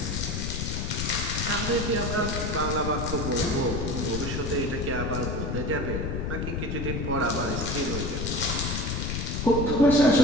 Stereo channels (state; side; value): noise; left; rumble, 2 dB below the sound